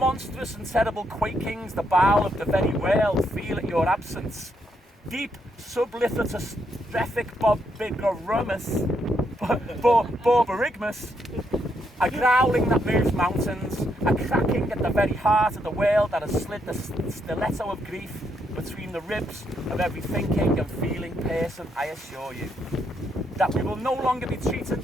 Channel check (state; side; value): normal; both; correlation 0.77